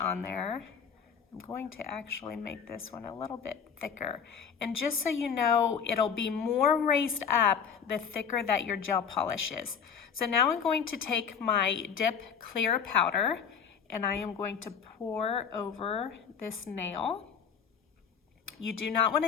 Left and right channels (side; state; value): right; quieter; 7.0 dB